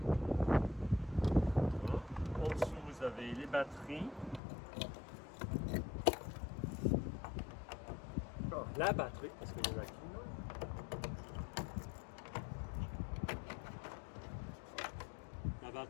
Voilà. En dessous, vous avez les batteries. la batterie, parce qu'il y en a qu'une. La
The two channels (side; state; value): right; drops out; at 4.4 s